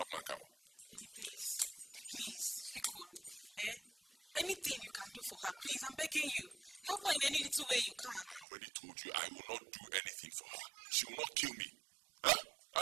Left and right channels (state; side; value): drops out; left; at 8.5 s